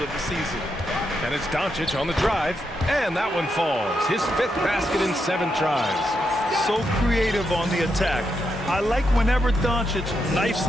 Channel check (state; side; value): normal; both; correlation 0.83